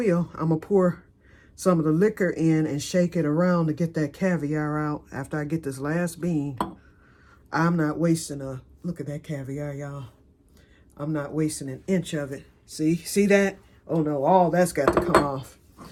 I'm going to pour some of the liquor in and shake it around to get that caviar out after I get this last bean. I'm not wasting look at that caviar, y'all. I'm not wasting an inch of it. See that? Oh no, all that's got to come off.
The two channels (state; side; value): identical; both; correlation 1.00